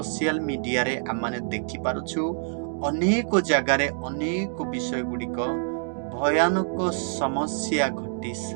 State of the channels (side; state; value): left; silent; digital silence